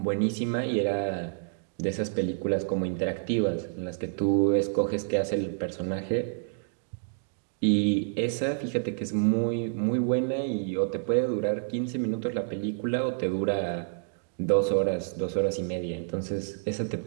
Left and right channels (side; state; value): left; silent; digital silence